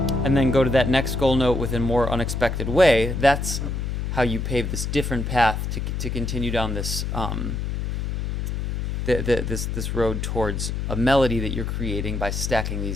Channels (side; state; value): left; noise; hum, 2 dB below the sound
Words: and then go to that next goal note with a more unexpected way, that's how you pave this different path to continue down this this road towards a melody that you're creating by stacking